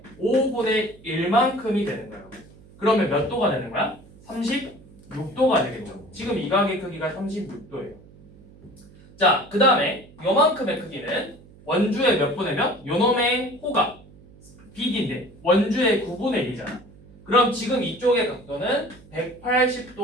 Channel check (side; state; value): right; noise; hum, 23 dB below the sound